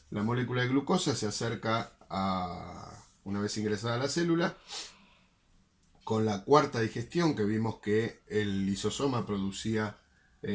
La molécula de glucosa se acerca una vez ingresada a la célula, con la cuarta digestión, que vimos que el lisosoma producía,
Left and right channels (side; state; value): both; identical; correlation 1.00